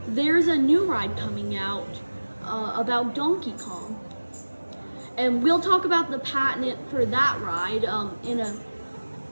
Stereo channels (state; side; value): inverted; both; correlation -1.00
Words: There's a new ride coming out about Donkey Kong, and we'll talk about the patent for that ride